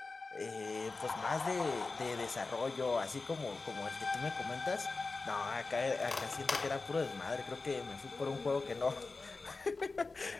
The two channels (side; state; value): right; quieter; 3.8 dB